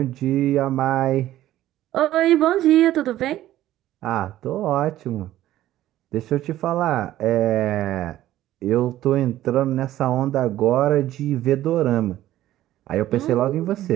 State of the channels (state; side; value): quieter; left; 14.0 dB